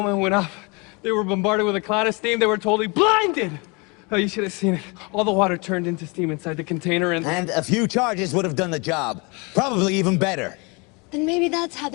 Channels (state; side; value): quieter; right; 29.4 dB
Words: it went up, they were bombarded with a cloud of steam. They were totally blinded. Oh, you should have seen it. All the water turned into steam inside the container and... And a few charges would have done the job. Probably even better. Then maybe that's how